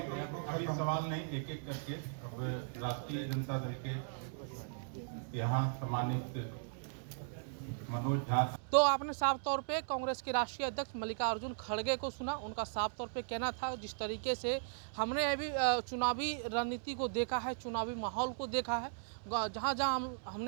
सवाल नहीं, एक एक करके राष्ट्रीय जनता दल के यहाँ सम्मानित मनोज झा तो आपने साफ तौर पे कांग्रेस के राष्ट्रीय अध्यक्ष मल्लिकार्जुन खड़गे को सुना। उनका साफ तौर पे कहना था, जिस तरीके से हमने अभी चुनावी रणनीति को देखा है, चुनावी माहौल को देखा है, जहाँ जहाँ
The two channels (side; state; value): left; silent; digital silence